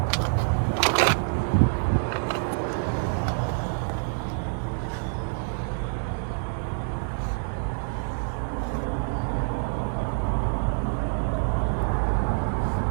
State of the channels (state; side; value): silent; left; digital silence